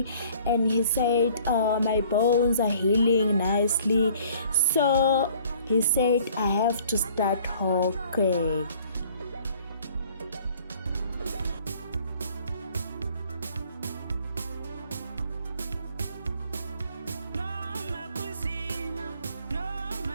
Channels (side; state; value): both; inverted; correlation -0.55